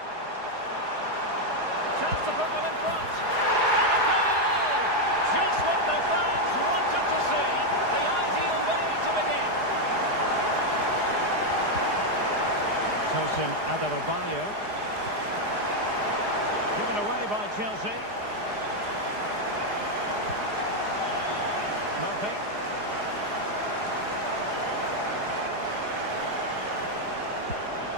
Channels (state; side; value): late; left; 4.8 ms